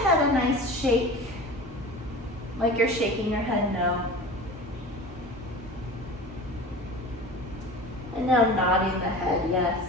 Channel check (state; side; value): normal; both; correlation 0.35